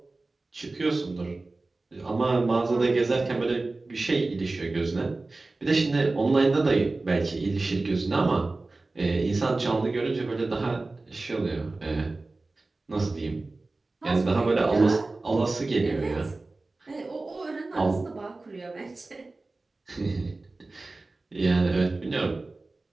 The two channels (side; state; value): left; quieter; 3.3 dB